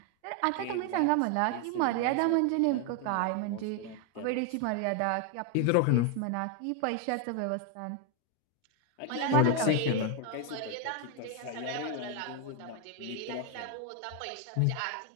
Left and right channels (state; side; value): different; both; correlation 0.01